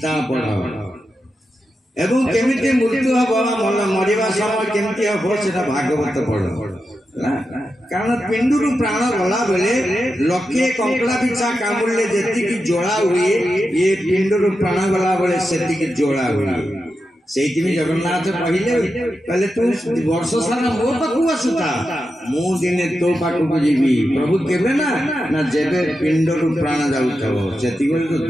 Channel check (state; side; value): normal; both; correlation 0.89